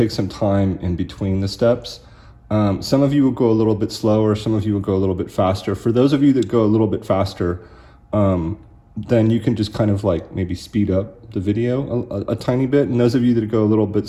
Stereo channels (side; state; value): both; identical; correlation 1.00